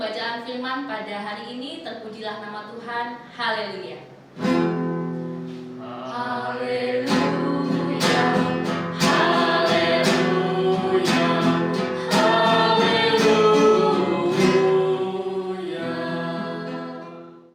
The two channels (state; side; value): identical; both; correlation 1.00